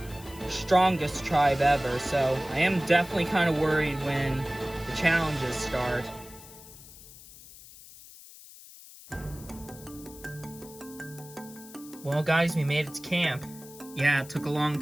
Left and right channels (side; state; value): left; noise; hiss, 18 dB below the sound